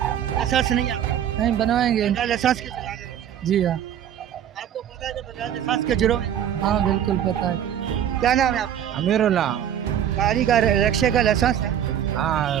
नहीं है? नहीं बनवाएंगे। लाइसेंस के चला रहे हैं? जी हाँ। आपको पता है कि बगैर लाइसेंस के जुर्म है? हाँ बिल्कुल पता है। क्या नाम है आपका? अमीरुल्लाह। गाड़ी का रिक्शे का लाइसेंस है? हाँ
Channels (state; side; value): quieter; left; 9.9 dB